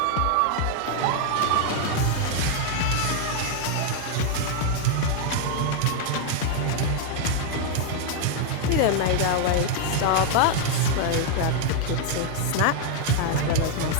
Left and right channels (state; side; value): different; both; correlation 0.00